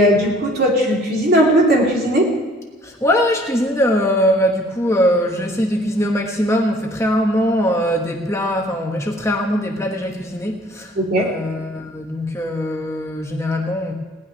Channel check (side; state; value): both; normal; correlation 0.55